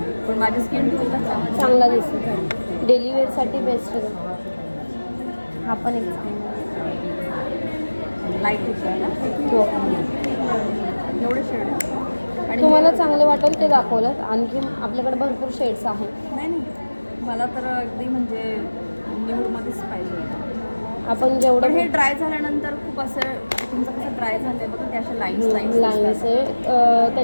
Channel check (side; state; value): both; inverted; correlation -1.00